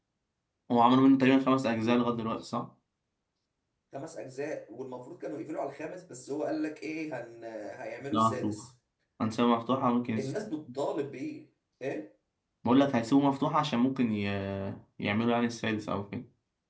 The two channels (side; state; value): both; identical; correlation 1.00